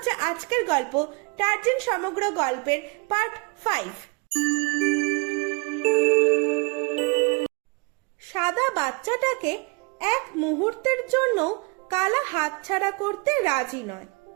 আজকের গল্প, টারজান সমগ্র গল্পের পার্ট 5। সাদা বাচ্চাটাকে এক মুহূর্তের জন্য কালা হাতছাড়া করতে রাজি নয়।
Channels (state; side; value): quieter; left; 29.9 dB